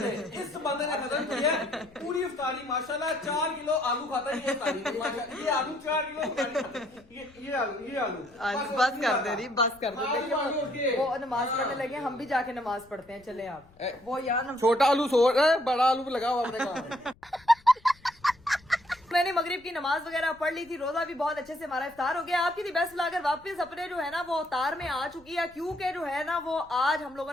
खत्म किया पूरी इफ्तारी माशाल्लाह। 4 किलो आलू खाता है ये इफ्तारी, माशाल्लाह। ये आलू 4 किलो, ये आलू बस कर दे रही, बस कर दे। देखिए वो नमाज पढ़ने लगे, हम भी जाके नमाज पढ़ते हैं। चले आप वो यार छोटा आलू बड़ा आलू लगा हुआ अपने काम। मैंने मगरिब की नमाज वगैरह पढ़ ली थी, रोजा भी बहुत अच्छे से हमारा इफ्तार हो गया। आपकी दी बेस्ट लाकर वापस अपने जो है ना वो अवतार में आ चुकी है, क्योंकि जो है ना वो आज हम लोगों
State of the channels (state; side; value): noise; left; rumble, 27 dB below the sound